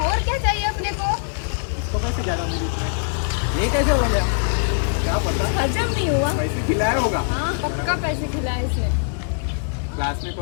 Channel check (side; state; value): right; silent; digital silence